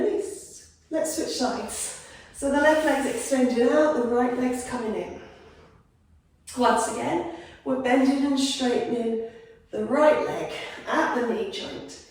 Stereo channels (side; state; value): both; identical; correlation 1.00